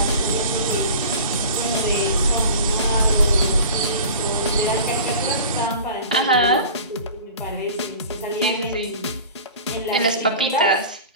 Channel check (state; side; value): inverted; both; correlation -0.38